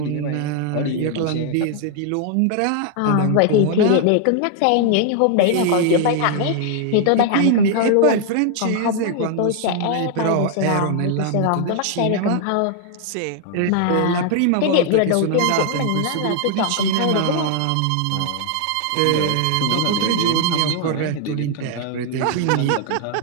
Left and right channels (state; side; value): different; both; correlation 0.00